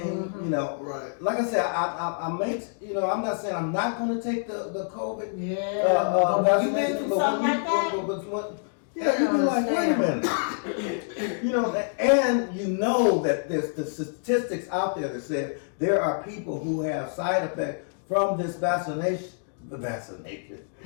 you know. Right. Like I said, I make, you know, I'm not saying I'm not going to take the COVID. Yeah. You been through something like that? Yeah, you be like, wait a minute. You know, and you know that there's the statistics out there that say there are people who have side effects from this vaccine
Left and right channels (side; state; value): right; silent; digital silence